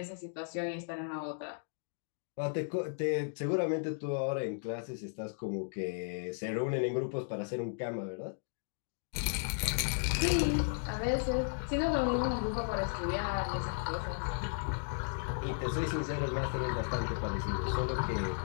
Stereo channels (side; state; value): right; silent; digital silence